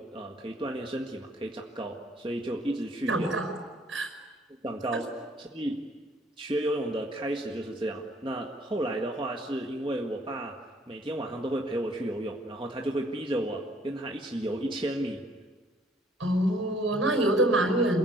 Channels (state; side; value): normal; both; correlation 0.60